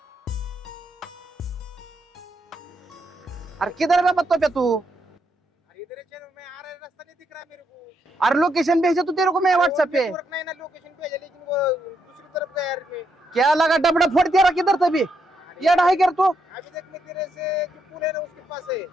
अरे किधर है बाबा तू? अरे लोकेशन भेजा तू तेरे को, मैं व्हाट्सएप पे। क्या लगा डबड़ा फोड़ दिया, किधर था भी ये ढाई कर तू।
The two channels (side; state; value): both; normal; correlation 0.79